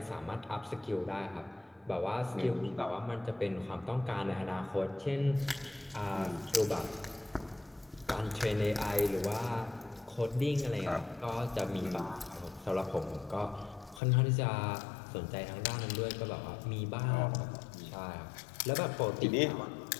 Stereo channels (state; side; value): drops out; right; at 14.0 s